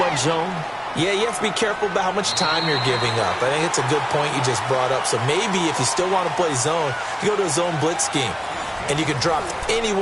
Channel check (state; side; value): identical; both; correlation 1.00